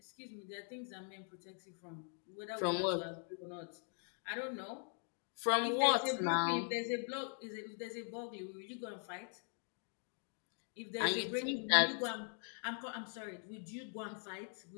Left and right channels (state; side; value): silent; right; 50 dB below the other